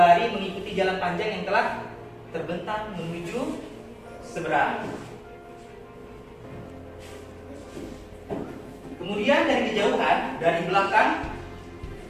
mengikuti jalan panjang yang telah terbentang menuju seberang. Kemudian dari kejauhan, dari belakang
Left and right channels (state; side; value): identical; both; correlation 1.00